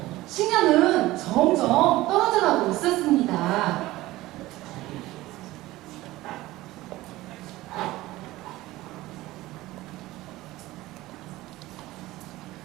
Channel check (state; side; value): quieter; left; 17.7 dB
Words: 식량은 점점 떨어져가고 있었습니다.